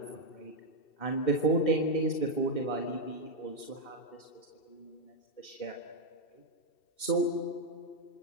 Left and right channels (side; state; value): right; late; 2.7 ms